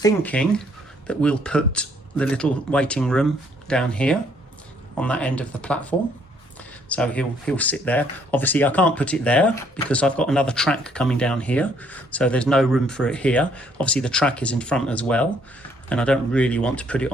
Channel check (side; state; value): both; normal; correlation 0.66